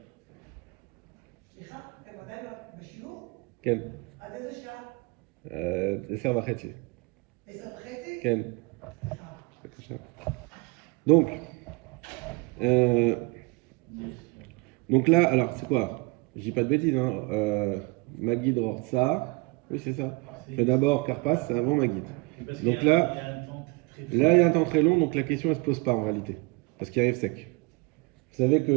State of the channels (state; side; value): quieter; left; 26.4 dB